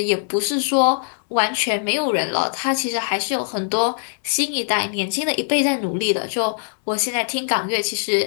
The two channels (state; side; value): silent; right; digital silence